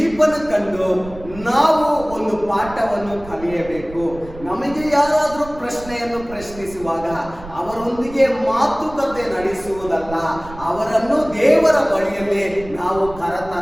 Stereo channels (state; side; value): noise; right; rumble, 16 dB below the sound